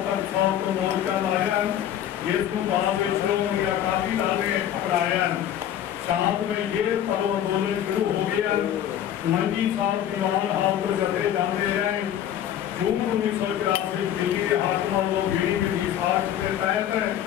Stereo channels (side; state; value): right; quieter; 10.7 dB